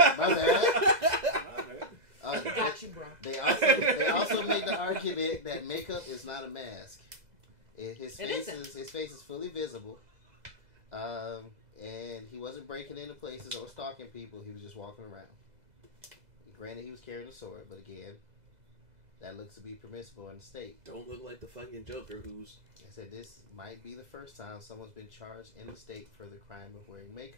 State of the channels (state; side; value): late; left; 2.0 ms